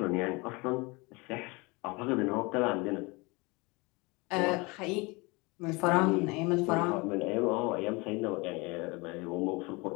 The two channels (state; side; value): quieter; right; 26.1 dB